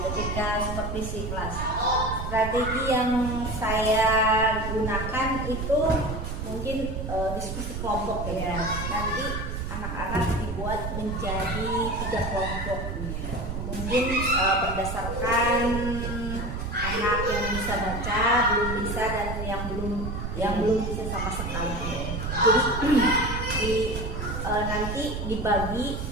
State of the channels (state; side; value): noise; right; rumble, 4 dB below the sound